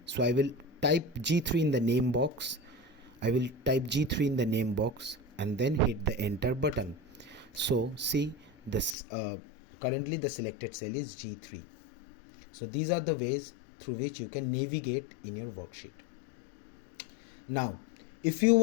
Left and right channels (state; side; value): drops out; right; at 9.0 s